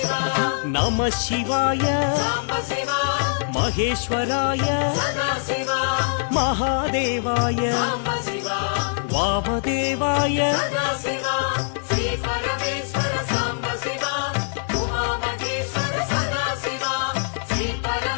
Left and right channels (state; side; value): silent; right; digital silence